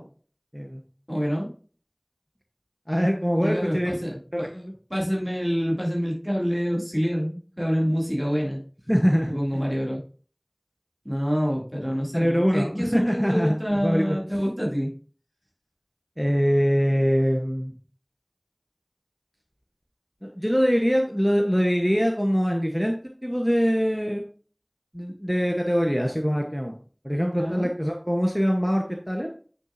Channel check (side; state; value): both; identical; correlation 1.00